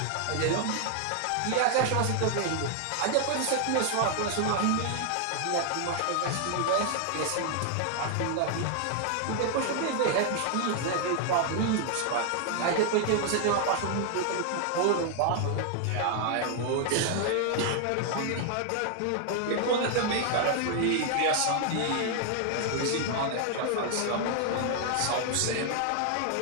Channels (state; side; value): different; both; correlation 0.00